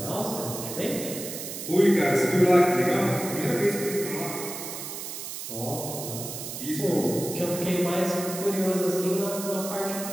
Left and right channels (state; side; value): noise; right; hiss, 8 dB below the sound